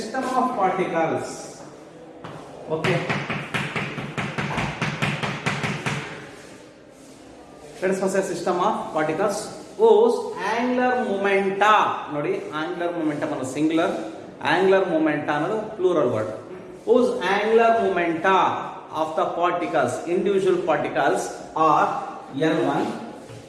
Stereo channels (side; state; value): both; identical; correlation 1.00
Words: of particles. Okay. Let us consider a system of particles whose angular momenta, ನೋಡಿ angular momentum ಅನ್ನೋದು singular, angular momenta ಅನ್ನೋದು plural word. Whose angular momenta of the particles, individual particles are L1,